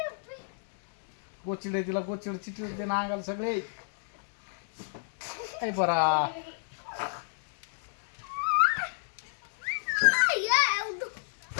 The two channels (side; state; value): right; silent; digital silence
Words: गोचिडे तिला गोचिड चिटले ते ना अंगाला सगळे काय बरा